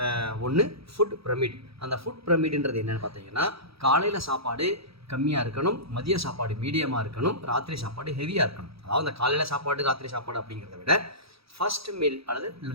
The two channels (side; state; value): left; late; 0.77 ms